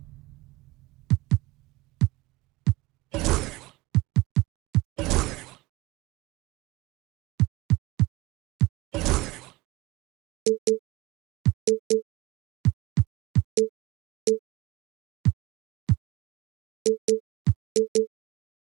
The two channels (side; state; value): left; quieter; 20.6 dB